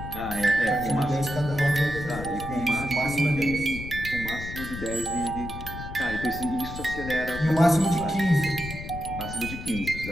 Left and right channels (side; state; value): left; noise; rumble, 9 dB below the sound